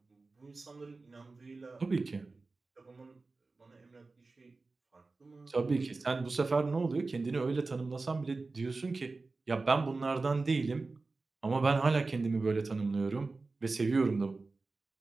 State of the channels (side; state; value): left; quieter; 3.7 dB